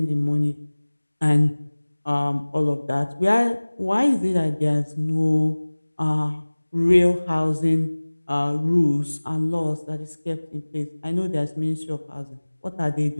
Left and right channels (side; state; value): both; inverted; correlation -1.00